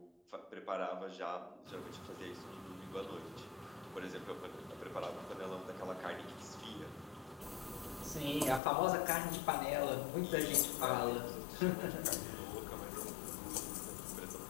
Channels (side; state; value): right; drops out; at 8.6 s